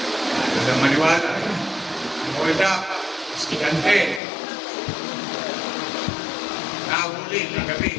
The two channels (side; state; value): right; drops out; at 4.2 s